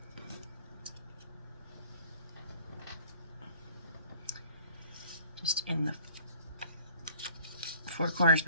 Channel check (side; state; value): both; inverted; correlation -0.55